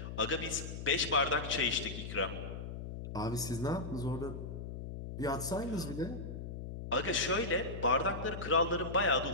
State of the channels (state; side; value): noise; left; hum, 8 dB below the sound